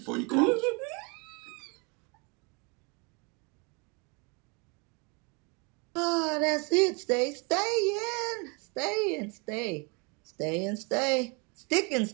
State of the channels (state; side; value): quieter; left; 32.1 dB